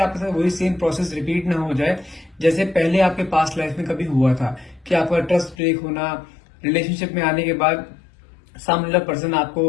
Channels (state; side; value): drops out; right; at 5.6 s